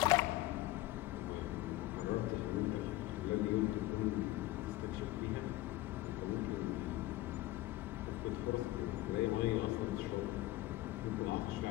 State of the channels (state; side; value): quieter; right; 17.2 dB